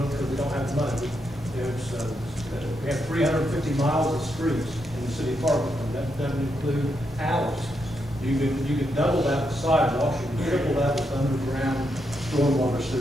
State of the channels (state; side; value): normal; both; correlation 0.81